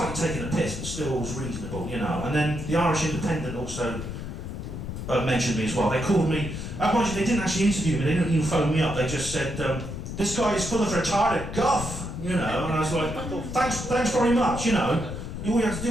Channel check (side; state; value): left; noise; rumble, 7 dB below the sound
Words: taking a piss, but still was reasonable, you know. And then the Irish Independent also mentioned me as well. They called me, mind you, they didn't actually interview me, they didn't even phone me up, they just said, "This guy is full of retarded guff," you know. And I was like, thanks very much, you know. All you have to